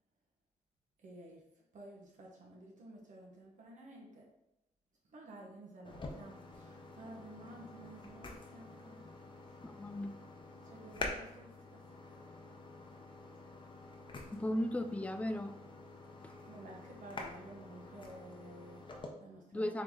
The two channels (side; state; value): both; normal; correlation 0.75